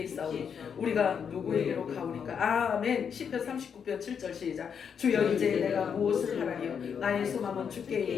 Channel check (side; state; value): right; quieter; 7.1 dB